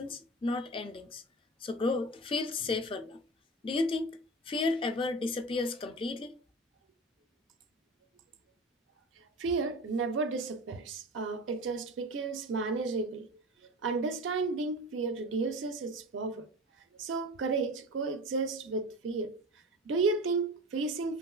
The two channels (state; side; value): normal; both; correlation 0.32